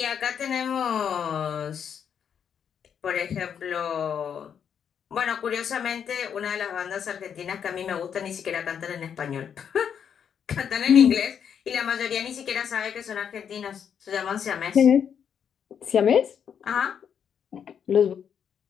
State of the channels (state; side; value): quieter; right; 7.9 dB